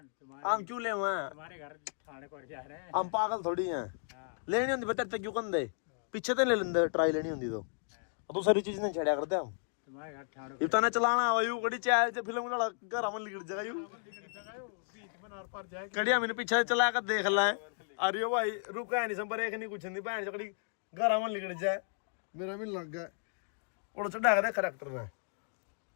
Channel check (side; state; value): right; silent; digital silence